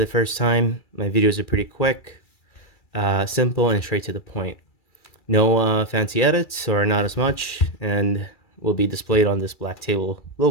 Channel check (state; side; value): late; right; 2.3 ms